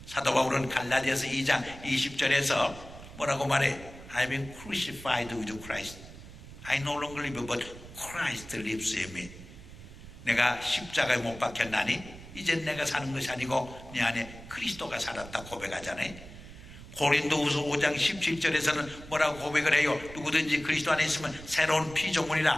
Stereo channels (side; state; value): right; noise; rumble, 16 dB below the sound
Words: 사도 바울은 갈라디아서 2장 20절에서 뭐라고 말해? I've been crucified with Christ. I no longer live, but Christ lives in me. 내가 십자가에 못 박혔나니 이젠 내가 사는 것이 아니고 내 안에 그리스도가 살았다 고백하잖아요. 고린도후서 5장 17절에서는 뭐라고 고백을 해요? 누구든지 그리스도 안에 있으면 새로운